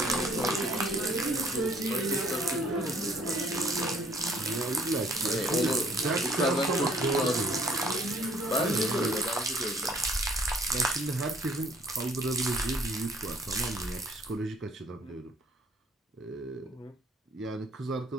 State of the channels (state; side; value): normal; both; correlation 0.58